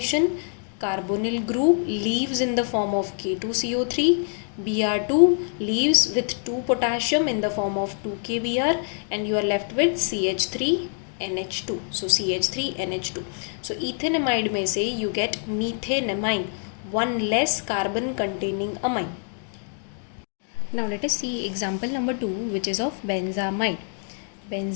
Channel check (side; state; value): right; silent; 55 dB below the other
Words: Carbonyl group leaves in the form of K2CO3. Br2 leaves with 2 potassium in the form of 2KBr, and you are left with CH3NH2. So CH3NH2. So ethanamide में से you get methanamine, one less carbon containing amine. Now let us see example number 2, which is of benzamide.